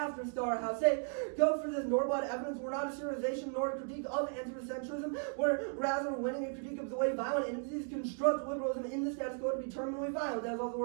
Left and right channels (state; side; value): silent; left; 54 dB below the other